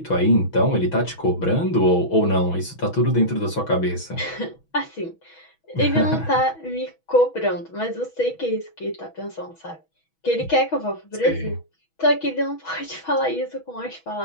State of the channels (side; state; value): right; late; 6.2 ms